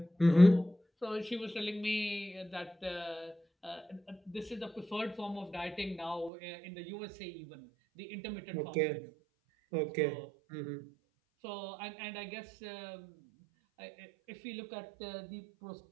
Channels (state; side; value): drops out; left; at 6.3 s